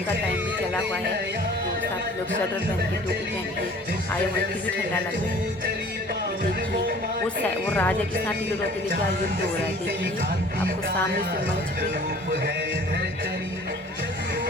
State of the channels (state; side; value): normal; both; correlation 0.49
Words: का टाइम भी चला हुआ है, तो काफ़ी लोग स्वेटर पहन के, टोपी पहन के आए हुए, फिर भी ठंडा लग रहा है। ये देखिए वो राजा के साथ तीलू रौतेली का युद्ध हो रहा है, देखिए आपको सामने से मंच पे,